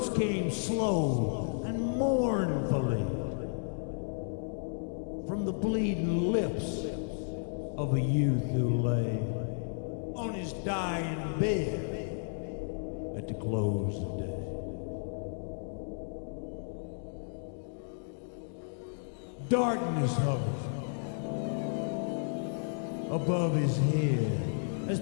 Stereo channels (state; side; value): silent; right; digital silence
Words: came slow and mournfully from the bleeding lips of a youth who lay on his dying bed at the close of day. Darkness hovered above his head as